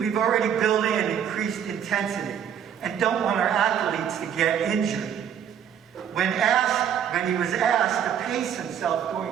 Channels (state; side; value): quieter; left; 8.7 dB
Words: already built in increased intensity, and don't want our athletes to get injured. When he was asked to pace himself